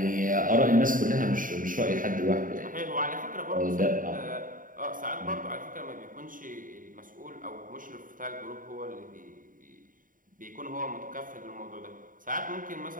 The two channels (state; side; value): late; left; 0.39 ms